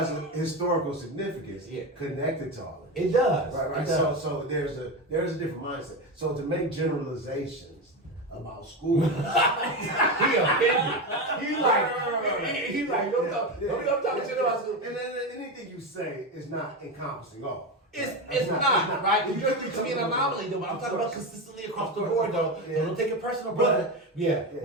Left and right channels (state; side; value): normal; both; correlation 0.18